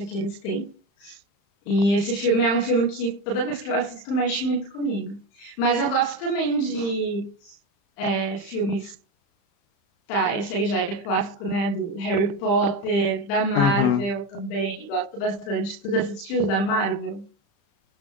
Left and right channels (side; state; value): right; late; 35 ms